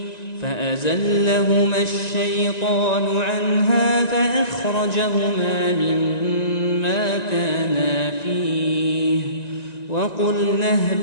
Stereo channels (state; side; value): late; right; 1.9 ms